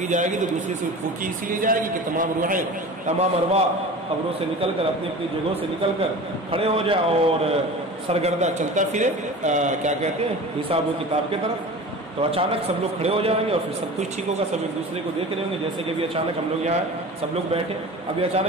جائے گی تو دوسری سور پھونکی اسی لیے جائے گی کہ تمام روحیں، تمام ارواح قبروں سے نکل کر، اپنی اپنی جگہوں سے نکل کر کھڑے ہو جائے اور سرگردہ چلتا پھرے، کیا کہتے ہیں، حساب و کتاب کی طرف. تو اچانک سب لوگ کھڑے ہو جائیں گے اور پھر سب کچھ ٹھیک ہوگا. سب ایک دوسرے کو دیکھ رہے ہوں گے، جیسے کہ ابھی اچانک ہم لوگ یہاں سب لوگ بیٹھے، ابھی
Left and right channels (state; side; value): normal; both; correlation 0.36